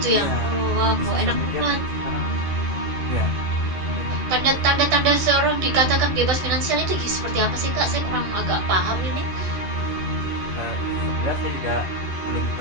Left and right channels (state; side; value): late; left; 12 ms